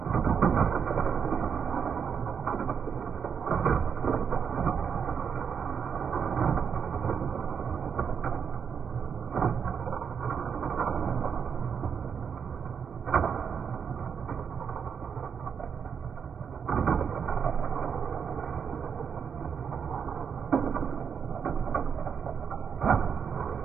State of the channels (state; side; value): quieter; left; 7.0 dB